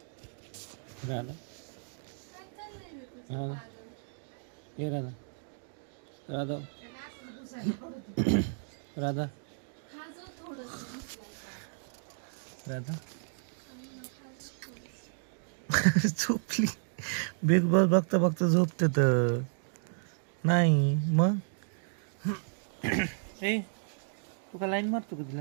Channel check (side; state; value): left; silent; digital silence